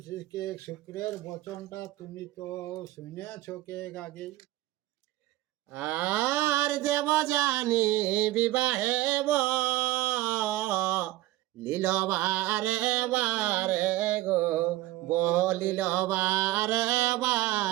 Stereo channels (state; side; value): quieter; left; 16.8 dB